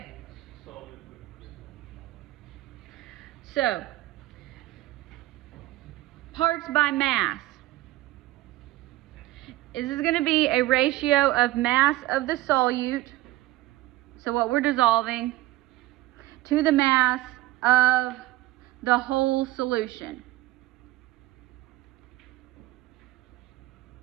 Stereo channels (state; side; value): quieter; left; 17.0 dB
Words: So, parts by mass. This is going to be a ratio of mass of the solute, so what we're dissolving, to the mass of the whole solution.